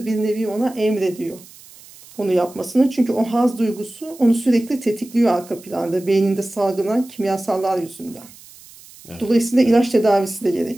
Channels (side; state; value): right; noise; hiss, 22 dB below the sound